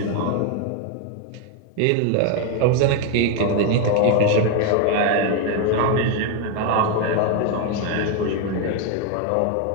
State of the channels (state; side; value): different; both; correlation 0.01